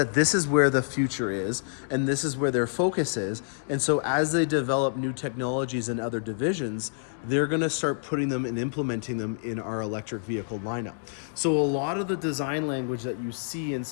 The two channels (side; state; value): right; silent; digital silence